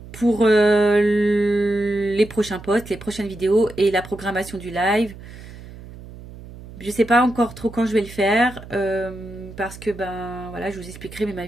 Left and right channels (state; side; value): noise; right; hum, 16 dB below the sound